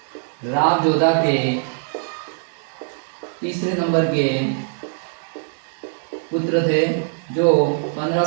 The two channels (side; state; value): left; silent; digital silence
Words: राव जोधा के तीसरे नंबर के पुत्र थे, जो